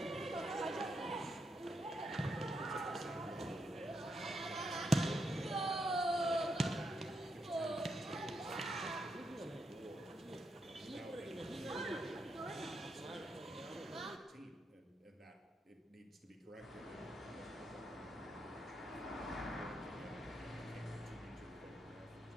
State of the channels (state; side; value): normal; both; correlation 0.81